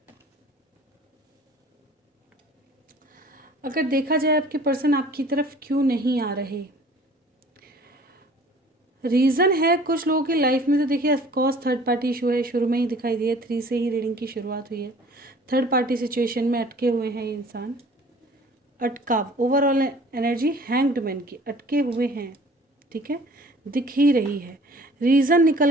अगर देखा जाए आपके पर्सन आपकी तरफ क्यों नहीं आ रहे, रीज़न है कुछ लोगों की लाइफ में तो देखिए ऑफकोर्स थर्ड पार्टी इशू है, शुरू में ही दिखाई दिया, 3 से ही रीडिंग की शुरुआत हुई है। थर्ड पार्टी सिचुएशन में अटके हुए हैं ये इंसान, अटकाव, ओवरऑल एनर्जी हैंग्ड मैन की, अटके हुए हैं, ठीक है, दिख ही रही है। रीज़न निकल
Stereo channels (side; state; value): both; normal; correlation 0.50